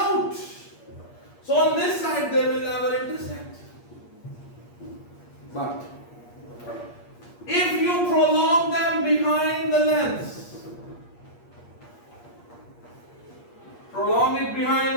So on this side they will never intersect. But if you prolong them behind the lens, prolong it behind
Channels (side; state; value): right; late; 8.5 ms